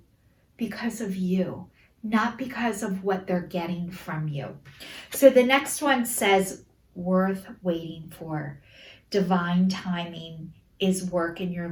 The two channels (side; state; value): both; identical; correlation 1.00